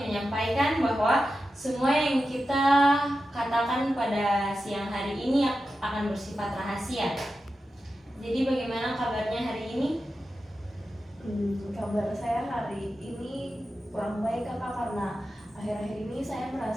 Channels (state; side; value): normal; both; correlation 0.91